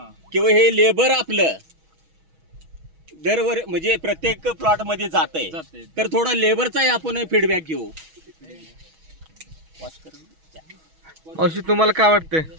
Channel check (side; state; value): left; late; 6.2 ms